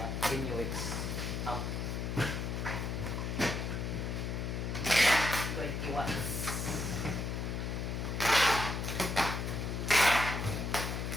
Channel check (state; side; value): noise; left; hum, 2 dB below the sound